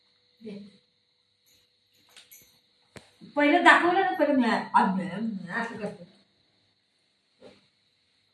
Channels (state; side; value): identical; both; correlation 1.00